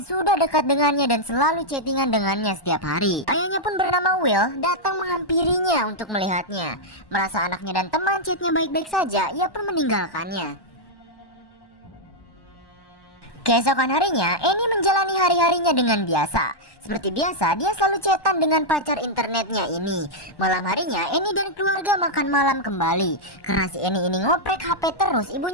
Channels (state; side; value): late; right; 1.1 ms